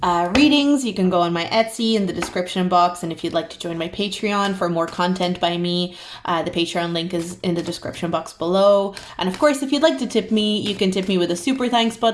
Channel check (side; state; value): both; identical; correlation 1.00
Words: readings, you can go on my Etsy in the description box. And if you'd like to join my Patreon for more content by me, the Patreon link is in the description box below. And of course, if you'd like to tip me, you can tip me with a super thanks